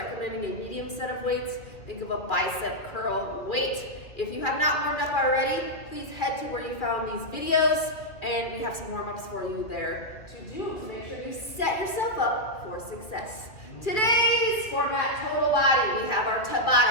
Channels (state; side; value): late; right; 2.5 ms